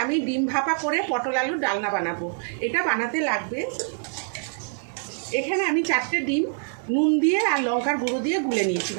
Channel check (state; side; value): silent; left; 62 dB below the other